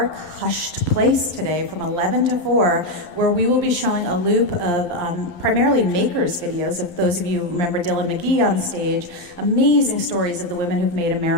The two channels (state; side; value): late; right; 12 ms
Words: hushed place today from 11 to 4, where we will be showing a loop of primarily makers videos. If those of you remember Dylan McGee on stage, amazing stories of the women who've made